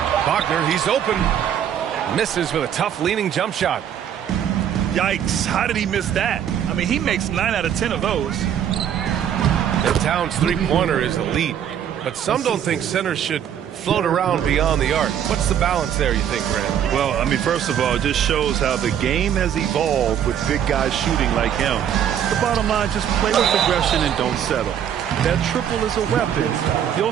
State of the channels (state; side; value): quieter; left; 9.4 dB